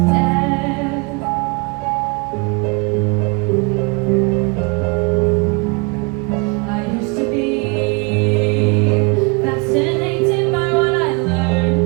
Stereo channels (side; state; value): left; quieter; 29.2 dB